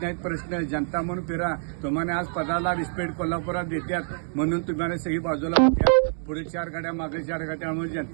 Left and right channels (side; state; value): left; silent; digital silence